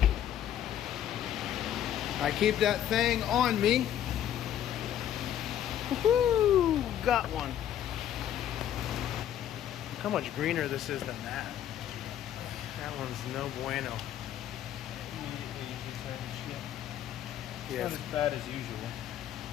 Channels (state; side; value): quieter; right; 10.8 dB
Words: I keep that thing on me. Woohoo! Got one. Look how much greener this is than that. That one's no bueno. Yeah. It's not as bad as usual.